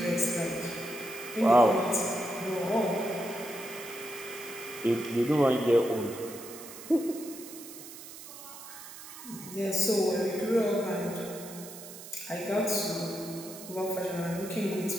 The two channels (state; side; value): noise; right; hiss, 14 dB below the sound